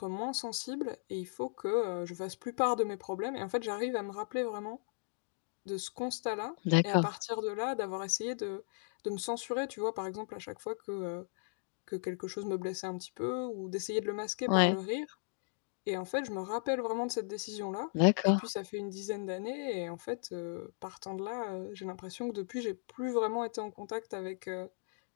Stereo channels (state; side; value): silent; right; digital silence